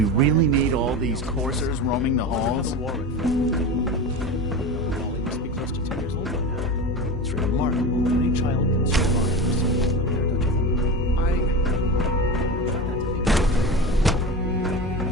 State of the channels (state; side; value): normal; both; correlation 0.26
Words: really need all these coursers roaming the halls? Wally must be close to 10 years old by now. It's remarkable that any child can survive for such a long period of time.